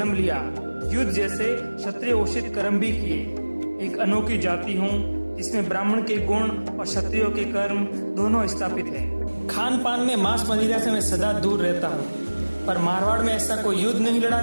लिया, युद्ध जैसे क्षत्रिय उचित कर्म भी किए। एक अनोखी जाति हूँ जिसमें ब्राह्मण के गुण और क्षत्रियों के कर्म दोनों स्थापित हैं। खान पान में मांस मदिरा से मैं सदा दूर रहता हूँ, पर मारवाड़ में ऐसा कोई युद्ध नहीं लड़ा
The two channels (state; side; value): inverted; both; correlation -1.00